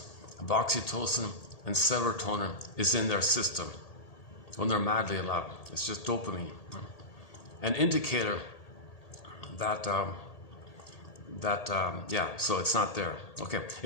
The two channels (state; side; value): late; right; 1.8 ms